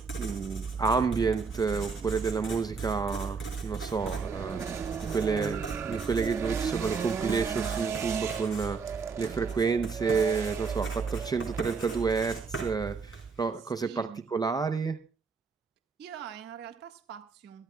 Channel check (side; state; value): left; quieter; 5.0 dB